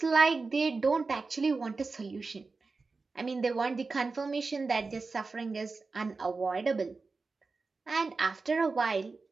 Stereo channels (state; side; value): quieter; left; 4.1 dB